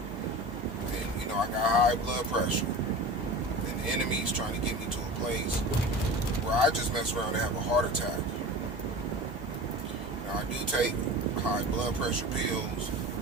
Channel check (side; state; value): both; normal; correlation 0.34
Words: And, I got high blood pressure. And the enemy's trying to get me to a place where I just mess around and have a heart attack. Now, I do take high blood pressure pills.